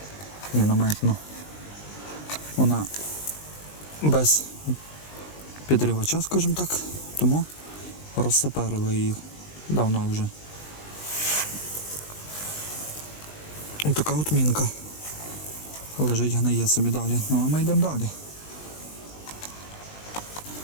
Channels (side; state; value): right; late; 20 ms